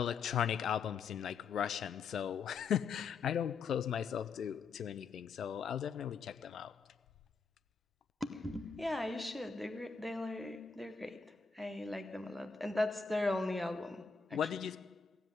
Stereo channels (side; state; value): right; quieter; 5.2 dB